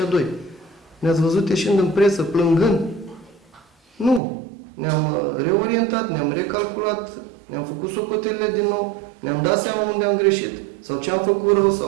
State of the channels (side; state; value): left; drops out; at 4.2 s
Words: 2. Ne-ați văzut ieșind în presă, plângând? Nu. Ne-am reorientat, ne-am recalculat, ne-am făcut socotelele din nou, ne-am dat seama unde am greșit sau ce am făcut rău